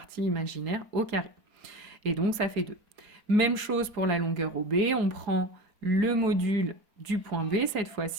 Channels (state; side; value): late; left; 4.4 ms